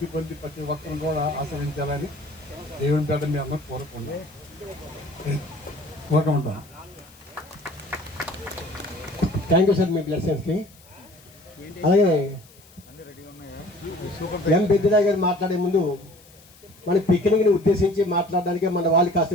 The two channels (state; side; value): noise; left; hiss, 26 dB below the sound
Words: పొంది ప్రతి ఒక్కరిని కూడా ఆశ్రయించాలని దేవుని పేట మీ అందరూ కోరుకుంటాను. థ్యాంక్ యూ సార్ మీ బ్లెస్సింగ్స్కి. అలాగే ఎం పెద్దిరాయ్ గారు మాట్లాడే ముందు మన పిక్నిక్ని ఉద్దేశించి మాట్లాడడానికి మన వాళ్ళు